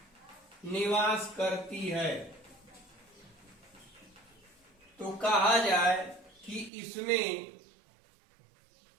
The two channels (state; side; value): drops out; left; at 6.7 s